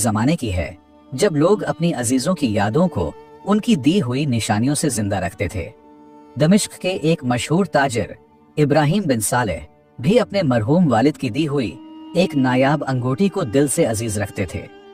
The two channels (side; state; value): both; identical; correlation 1.00